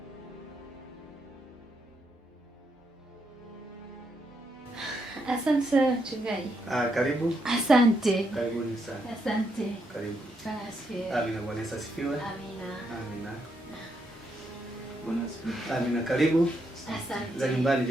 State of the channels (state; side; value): normal; both; correlation 0.79